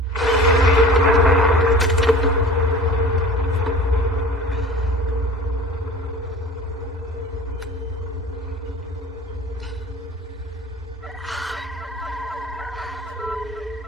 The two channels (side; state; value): both; normal; correlation 0.42